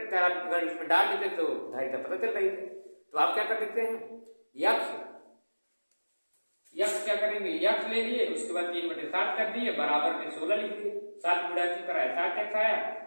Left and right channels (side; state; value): both; inverted; correlation -1.00